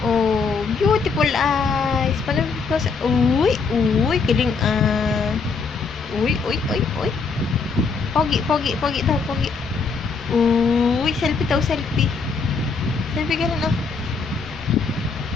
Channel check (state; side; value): quieter; right; 4.9 dB